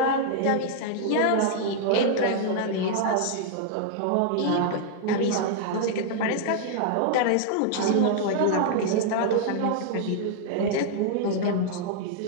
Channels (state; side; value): different; both; correlation -0.01